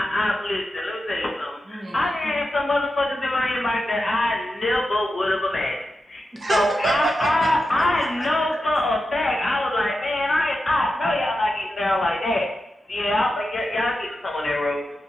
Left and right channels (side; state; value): both; normal; correlation 0.90